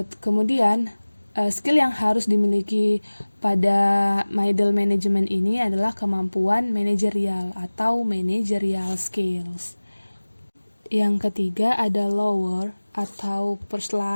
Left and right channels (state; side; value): inverted; both; correlation -1.00